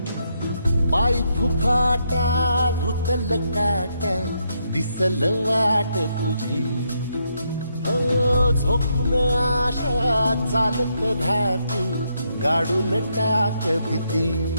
पाय फुफाटा रुतल काटा दिसल वाट तुझी हो झोकून आशा चालत राहतू गाडून टाक भीती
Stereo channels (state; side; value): inverted; both; correlation -0.78